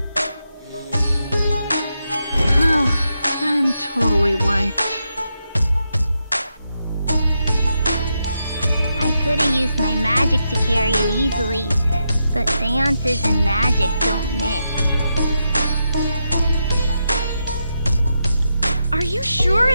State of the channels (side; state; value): both; inverted; correlation -0.85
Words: Oh, I'm totally wiped. I could have used my magic to carry it easily, but seances and magic don't mix. Are you sure